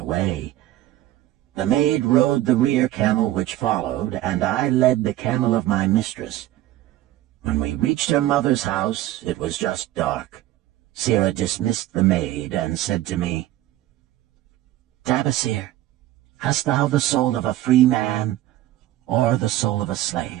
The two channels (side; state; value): left; quieter; 14.8 dB